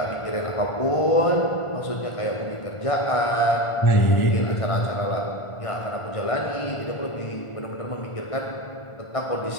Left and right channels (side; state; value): right; late; 1.4 ms